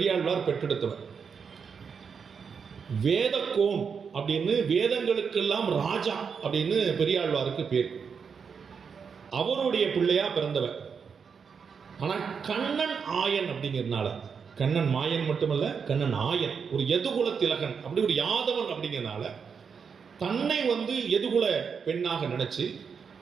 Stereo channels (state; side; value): quieter; left; 6.2 dB